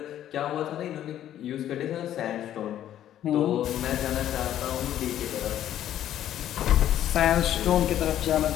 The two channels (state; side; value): quieter; right; 11.6 dB